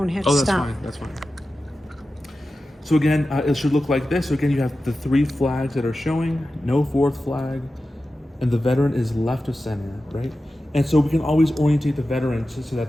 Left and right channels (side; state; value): both; normal; correlation 0.93